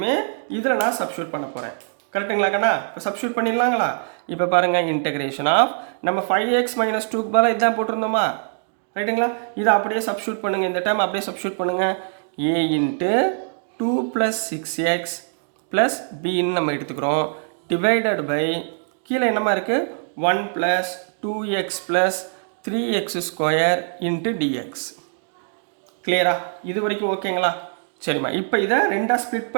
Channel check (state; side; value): silent; left; digital silence